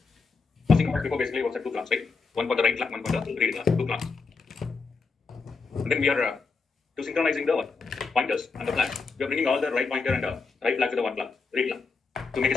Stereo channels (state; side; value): quieter; right; 4.6 dB